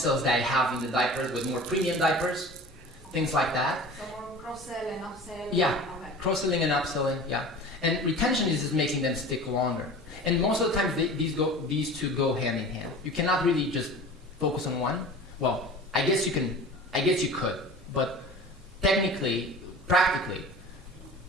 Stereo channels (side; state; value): both; normal; correlation 0.38